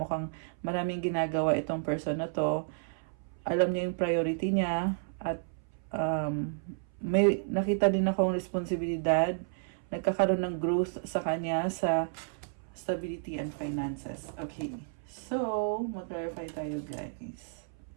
maraming ginagawa itong person na to. Alam niya yung priority niya. At may nakita din akong responsibilidad. Nagkakaroon ng growth sa kanya sa stability and finances. Okay. So, mag-clarify tayo guys.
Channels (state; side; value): silent; left; 57 dB below the other